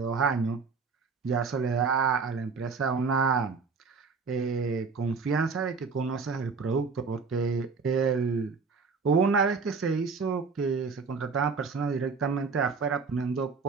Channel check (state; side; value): quieter; left; 4.9 dB